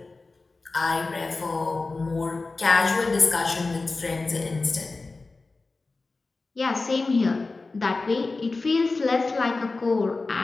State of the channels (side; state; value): right; quieter; 3.6 dB